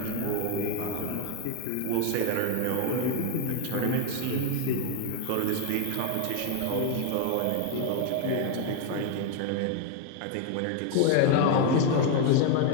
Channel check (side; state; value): both; different; correlation 0.01